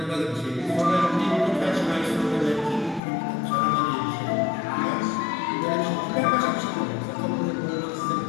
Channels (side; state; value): right; drops out; at 3.0 s